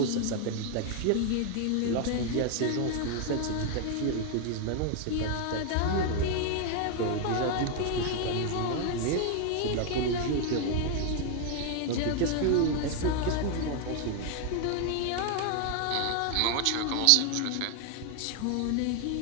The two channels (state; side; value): different; both; correlation 0.00